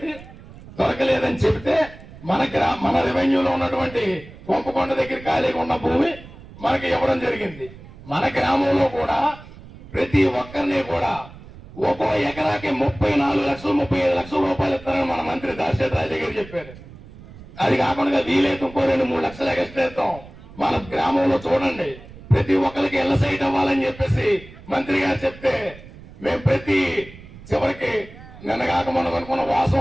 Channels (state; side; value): noise; right; rumble, 18 dB below the sound